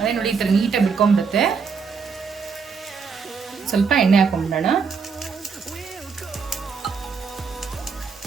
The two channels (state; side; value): quieter; left; 5.6 dB